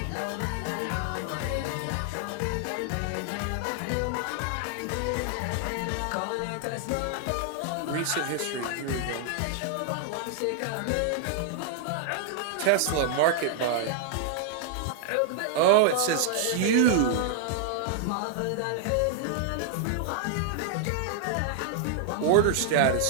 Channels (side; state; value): both; different; correlation 0.00